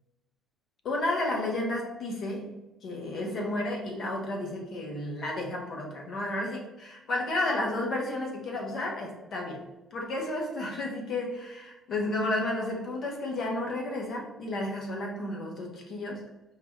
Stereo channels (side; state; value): both; normal; correlation 0.60